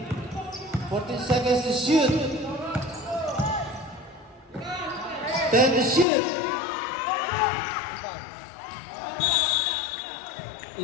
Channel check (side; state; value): right; drops out; at 6.1 s